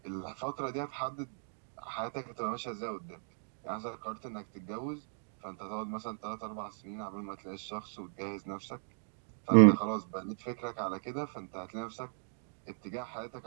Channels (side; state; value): left; silent; digital silence